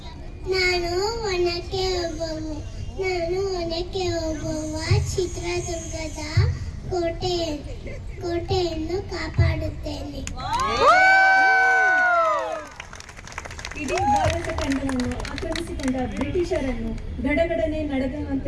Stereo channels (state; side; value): identical; both; correlation 1.00